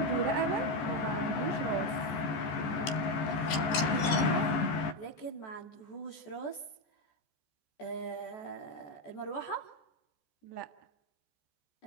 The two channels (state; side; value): late; right; 14 ms